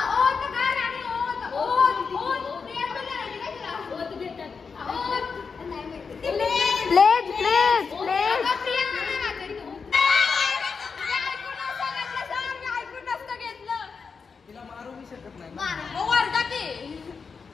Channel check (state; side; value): quieter; right; 5.3 dB